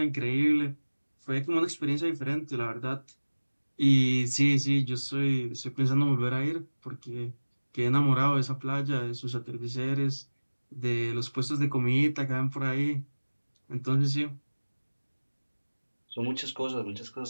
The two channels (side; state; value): both; inverted; correlation -1.00